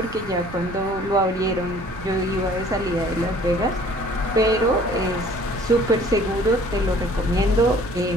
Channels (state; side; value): noise; right; rumble, 14 dB below the sound